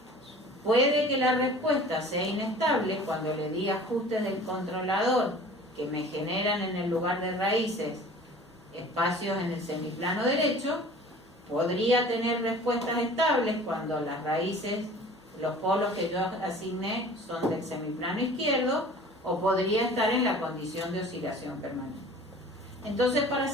Puede que la respuesta sea inestable cuando le di ajustes del controlador que me generan en el lugar de raíces espacios en el semiplano derecho, podría tener respuestas estables cuando las raíces, los polos que yo asigné son del semiplano izquierdo, o podría estar en la condición de oscilación permanente. Entonces, para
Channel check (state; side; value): normal; both; correlation 0.45